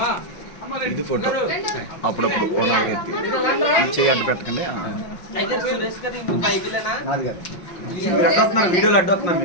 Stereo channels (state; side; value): late; right; 5.5 ms